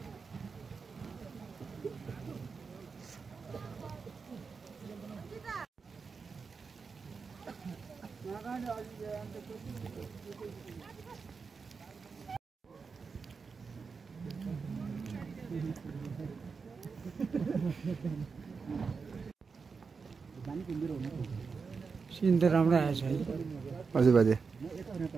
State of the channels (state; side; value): quieter; left; 5.1 dB